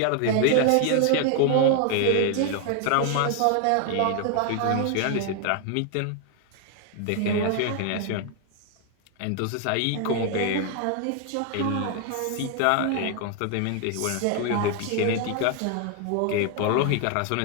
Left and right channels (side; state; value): both; different; correlation 0.00